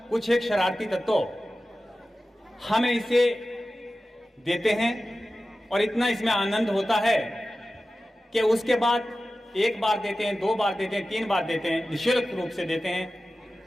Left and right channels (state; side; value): normal; both; correlation 0.95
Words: कुछ एक शरारती तत्व हमें इसे देते हैं और इतना इसमें आनंद होता है कि उसके बाद एक बार देते हैं, 2 बार देते हैं, 3 बार देते हैं, निःशुल्क रूप से देते हैं।